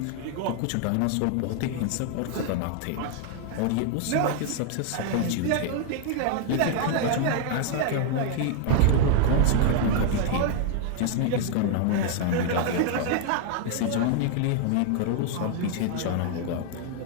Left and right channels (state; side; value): different; both; correlation 0.00